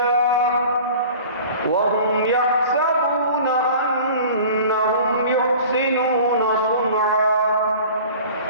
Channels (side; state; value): both; inverted; correlation -0.43